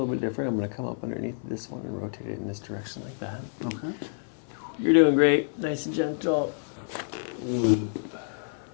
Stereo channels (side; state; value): right; silent; 59 dB below the other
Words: bit different. I'm going to come up underneath this one and rotate it in this direction like that. Okay. You're doing great. Nice and gentle.